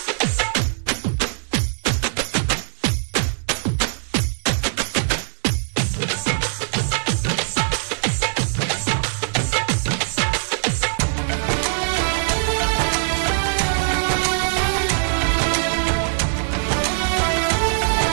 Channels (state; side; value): silent; left; digital silence